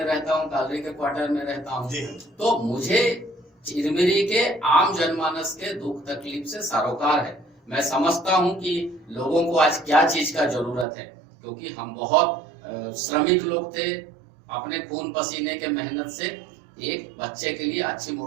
रहता हूँ, कालरी के क्वार्टर में रहता हूँ, तो मुझे चिरमिरी के आम जनमानस के दुख तकलीफ से सरोकार है। मैं समझता हूँ कि लोगों को आज क्या चीज का जरूरत है, क्योंकि हम बहुत श्रमिक लोग थे, अपने खून पसीने के मेहनत से एक बच्चे के लिए अच्छी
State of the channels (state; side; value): drops out; left; at 10.9 s